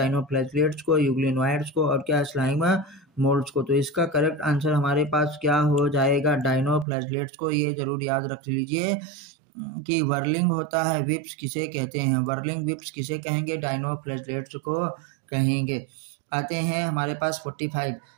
को, यूग्लिनोइड्स को और क्या? स्लाइम मोल्ड्स को। तो इसका करेक्ट आंसर हमारे पास क्या हो जाएगा? डाइनोफ्लैगेलेट्स को। ये जरूर याद रख लीजिए कि वर्लिंग होता है, विप्स किसे कहते हैं? वर्लिंग विप्स किसे कहेंगे? डाइनोफ्लैगेलेट्स को कहेंगे। आते हैं हमारे पास 45।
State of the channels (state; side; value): drops out; left; at 6.9 s